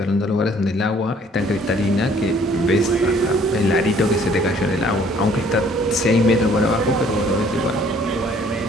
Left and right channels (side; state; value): both; normal; correlation 0.59